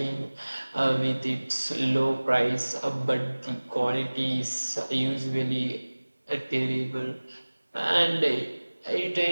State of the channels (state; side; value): inverted; both; correlation -1.00